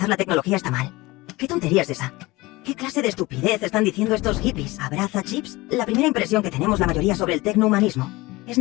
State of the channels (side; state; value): right; quieter; 20.9 dB